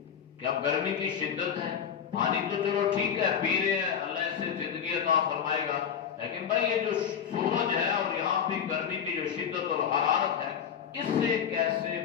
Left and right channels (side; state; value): right; quieter; 7.9 dB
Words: کہ اب گرمی کی شدت ہے، پانی تو چلو ٹھیک ہے پی رہے ہیں، اللہ اس سے زندگی عطا فرمائے گا، لیکن بھائی یہ جو سورج ہے اور یہاں پہ گرمی کی جو شدت اور حرارت ہے، اس سے کیسے